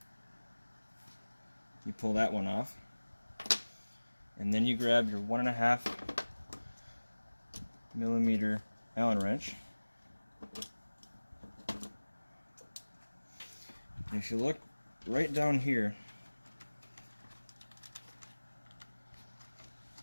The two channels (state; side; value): inverted; both; correlation -1.00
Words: you pull that one off, and then you grab your 1.5 millimeter Allen wrench. And if you look right down here,